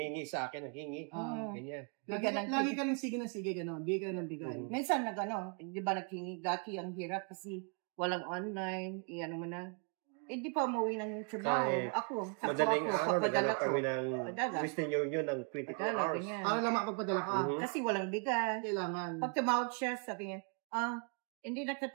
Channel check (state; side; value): quieter; left; 38.2 dB